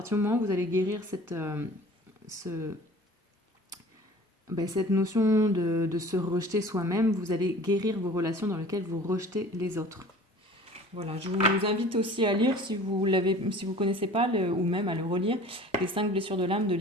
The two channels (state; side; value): normal; both; correlation 0.45